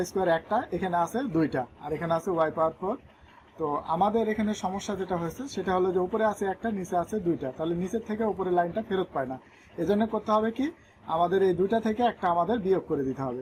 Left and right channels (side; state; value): both; identical; correlation 1.00